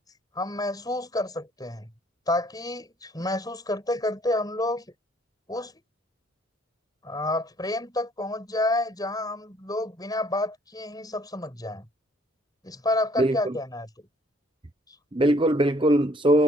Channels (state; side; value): normal; both; correlation 0.61